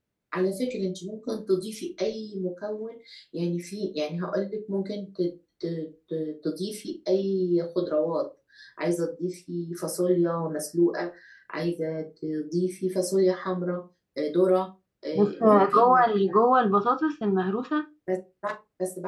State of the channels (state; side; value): identical; both; correlation 1.00